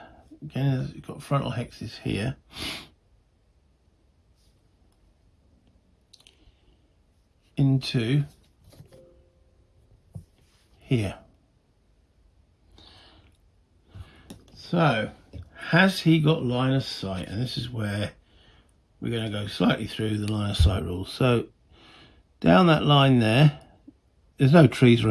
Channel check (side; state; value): both; identical; correlation 1.00